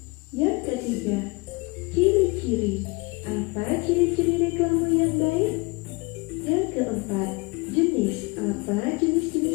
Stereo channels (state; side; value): quieter; right; 26.4 dB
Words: Yang ketiga, ciri-ciri. Apa ciri-ciri reklame yang baik? Yang keempat, jenis. Apa